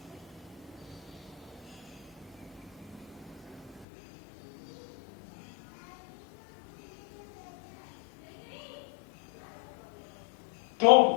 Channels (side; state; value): right; drops out; at 3.9 s